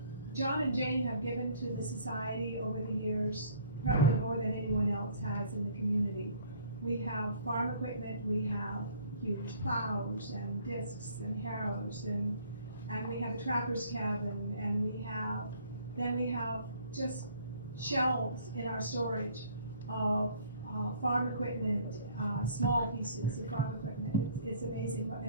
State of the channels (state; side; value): inverted; both; correlation -0.57